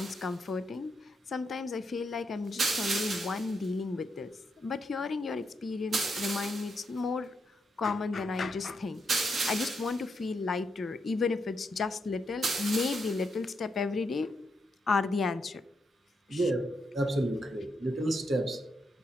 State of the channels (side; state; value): both; normal; correlation 0.81